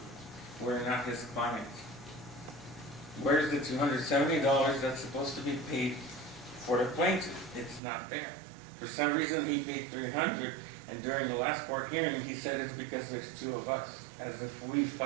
We're not his clients. Where's the $270 that's supposed to be paid for the plaintiff? It's not there. For some reason, he paid $300, and during the last court hearing, he said it's because there's two of us, as if we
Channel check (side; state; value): left; drops out; at 7.8 s